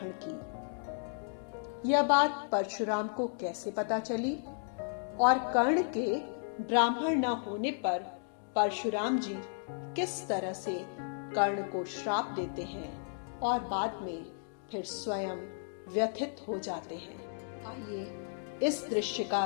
की। यह बात परशुराम को कैसे पता चली और कर्ण के ब्राह्मण न होने पर परशुराम जी किस तरह से कर्ण को श्राप देते हैं और बाद में फिर स्वयं व्यथित हो जाते हैं। आइए इस दृश्य का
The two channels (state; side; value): silent; right; digital silence